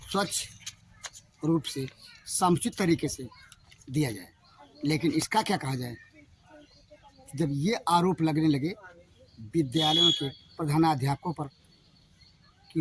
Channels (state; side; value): identical; both; correlation 1.00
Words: रूप से समुचित तरीके से दिया जाए। लेकिन इसका क्या कहा जाए, जब ये आरोप लगने लगे विद्यालयों के प्रधानाध्यापकों पर